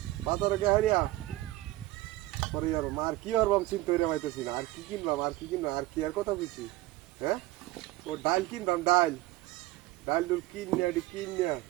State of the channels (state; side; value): quieter; left; 17.7 dB